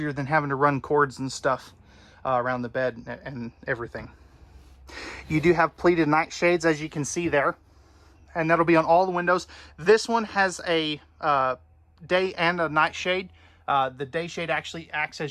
than having to run cords and stuff around the bed and everything. You do have pleated nightshades, as you can see there, and that'll be on all the windows. This one has a day and a night shade. The day shade actually acts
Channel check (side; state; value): both; identical; correlation 1.00